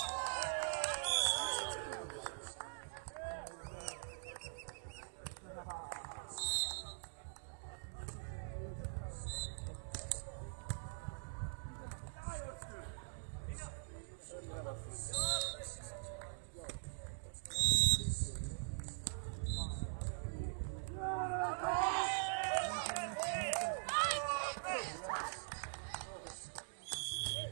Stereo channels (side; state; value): left; silent; digital silence